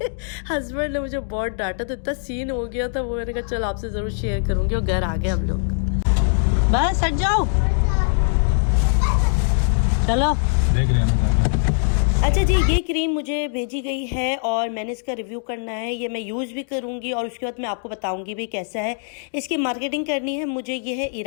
हस्बैंड ने मुझे बहुत डांटा, तो इतना सीन हो गया था वो। मैंने कहा चल आपसे ज़रूर शेयर करूँगी। और घर आ गए हम लोग। बस हट जाओ, चलो। देख रहे हैं। अच्छा जी, ये क्रीम मुझे भेजी गई है और मैंने इसका रिव्यू करना है। ये मैं यूज़ भी करूँगी और उसके बाद मैं आपको बताऊँगी भी कैसा है। इसकी मार्केटिंग करनी है मुझे। ये है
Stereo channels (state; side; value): silent; right; digital silence